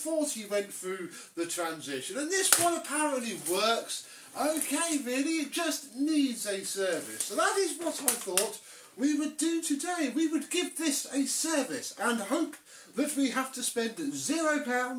went through the transition, and this one apparently works okay really, it just needs a service. So that is what I thought we would do today. We would give this a service and hope that we have to spend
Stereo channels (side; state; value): both; identical; correlation 1.00